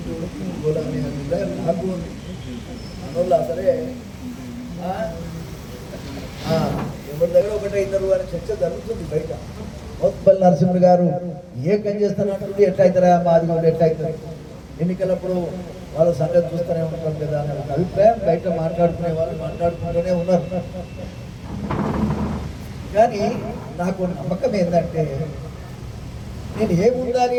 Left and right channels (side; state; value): both; identical; correlation 1.00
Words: పోదామని నాకు ఉంది అందువల్ల సరే ఎవరి దగ్గర ఒకటే ఇద్దరు అని చర్చ జరుగుతుంది బయట. మోత్పల్లి నరసింహ గారు ఏకం చేస్తానంటుంది, ఎట్లా అవుతారా మాది కూడా ఎట్లా అవుతుంది, ఎన్నికలప్పుడు వాళ్ళ సంగతి చూస్తూనే ఉంటాం కదా అనే ఒక అభిప్రాయం బయట మాట్లాడుకునే వాళ్ళు మాట్లాడుకుంటూనే ఉన్నారు. కానీ నాకు నమ్మకం ఏంటంటే నేను